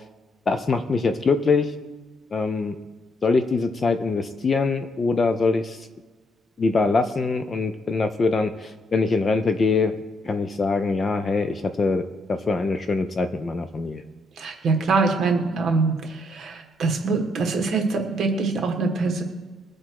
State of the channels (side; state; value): both; normal; correlation 0.74